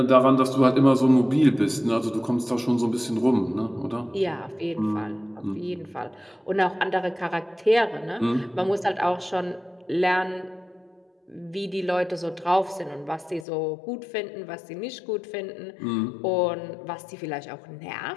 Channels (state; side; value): drops out; right; at 13.5 s